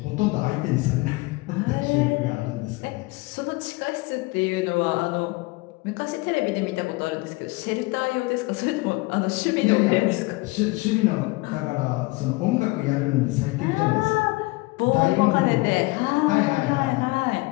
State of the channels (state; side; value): quieter; right; 23.5 dB